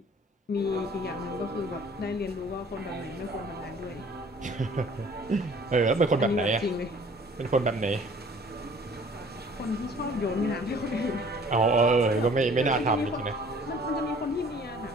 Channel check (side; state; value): both; normal; correlation 0.53